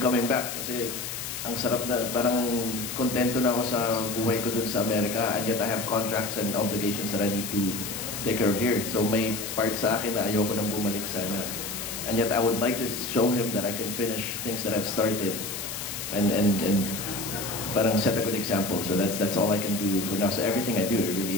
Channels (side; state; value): left; noise; hiss, 6 dB below the sound